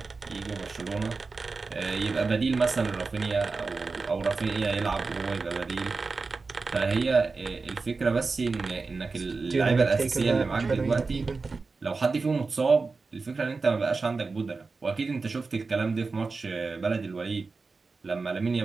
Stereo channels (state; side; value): quieter; left; 4.2 dB